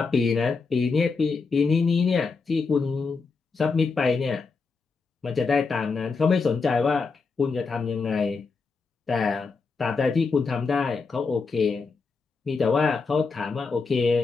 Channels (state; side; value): quieter; right; 4.6 dB